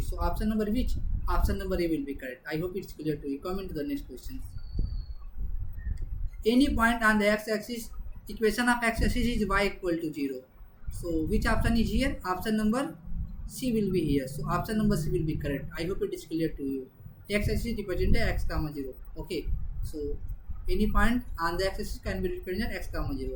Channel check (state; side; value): identical; both; correlation 1.00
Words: So option number which? Option number A will be correct. I hope it's clear to you. Come into the next question. Any point on the x-axis, equation of x-axis is y equal to 0. So which option is here? Option number C will be here. So option number C will be correct. I hope it is clear to you. X-axis represented x comma 0. Okay. So any point on the x-axis can be represented x comma